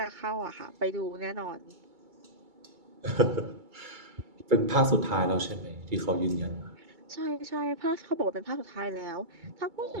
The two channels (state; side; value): late; left; 2.2 ms